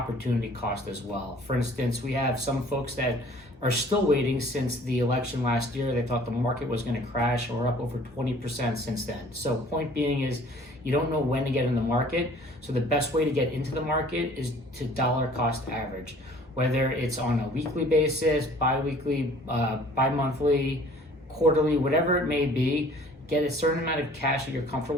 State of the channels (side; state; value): both; normal; correlation 0.52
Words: cost as well. For instance, we have some folks that are still waiting since the election last year. They thought the market was going to crash, and we're up over 20% since then. So point being is you don't know when to get in the market. So the best way to get into the market is to dollar cost average, whether it's on a weekly basis, bi-weekly, bi-monthly, quarterly, whatever it may be. Get a certain amount of cash that you're